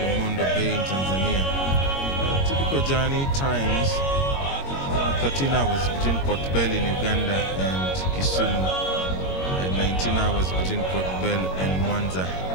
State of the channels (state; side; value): late; right; 22 ms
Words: Bay in Tanzania. Typical journey times 13 hours between Port Bell in Uganda and Kisumu, and 19 hours between Port Bell and Mwanza